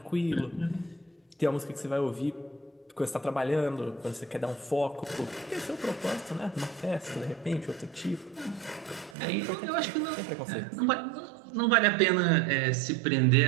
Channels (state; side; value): drops out; left; at 9.2 s